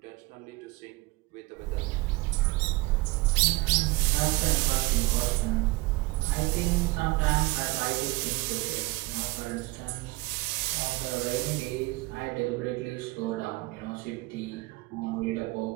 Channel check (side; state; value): left; quieter; 21.7 dB